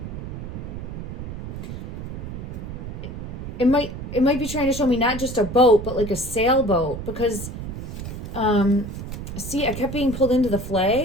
It might be trying to show me not just a boat, but like a sailboat, because see, I kept being pulled into the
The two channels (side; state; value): right; noise; rumble, 8 dB below the sound